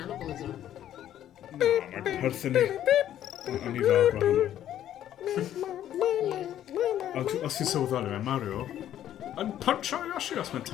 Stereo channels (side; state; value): right; quieter; 11.4 dB